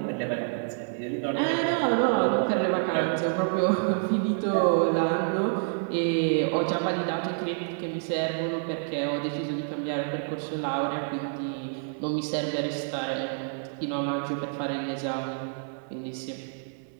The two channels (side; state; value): left; silent; 59 dB below the other